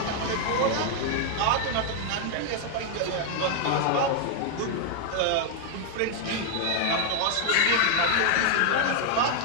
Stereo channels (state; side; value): different; both; correlation 0.00